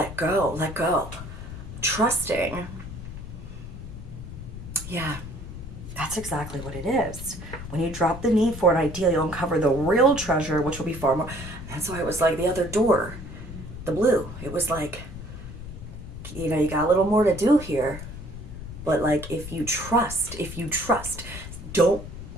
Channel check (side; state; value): left; noise; rumble, 11 dB below the sound